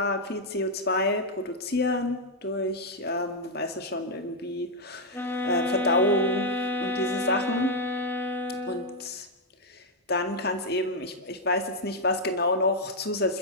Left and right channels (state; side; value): normal; both; correlation -0.02